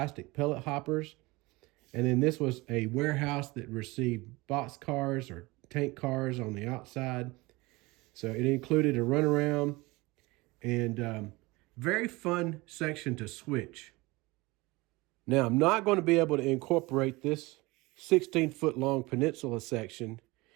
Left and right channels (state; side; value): quieter; left; 22.8 dB